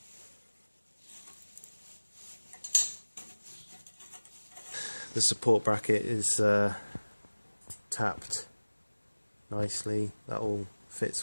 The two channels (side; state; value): both; inverted; correlation -1.00